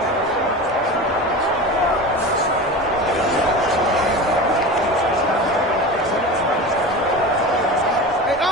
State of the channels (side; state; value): both; normal; correlation 0.30